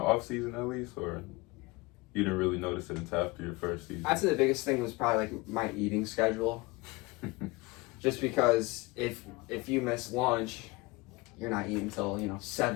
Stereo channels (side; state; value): right; quieter; 23.5 dB